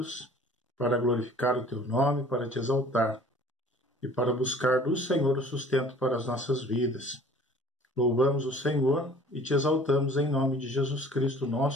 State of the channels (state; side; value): normal; both; correlation 0.50